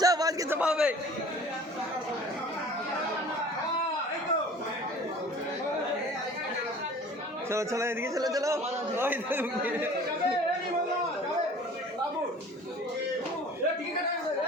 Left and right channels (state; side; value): normal; both; correlation 0.46